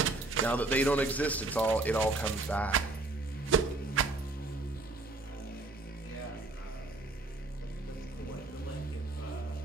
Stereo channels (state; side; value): quieter; left; 3.0 dB